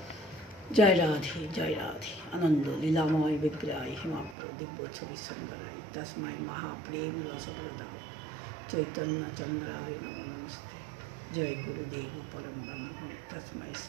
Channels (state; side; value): drops out; left; at 4.4 s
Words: জয় রাধে জয় রাধে। আনন্দ লীলাময় বিগ্রহায় হিমাপ্র দিব্য ছবি সুন্দরায় তস্মাই মহাপ্রেম রসপ্রদায় চৈতন্য চন্দ্রায় নমো নমস্তে। জয় গুরুদেব পরম ব্রহ্ম তস্মাই